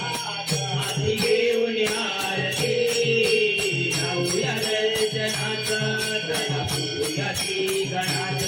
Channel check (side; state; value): both; identical; correlation 1.00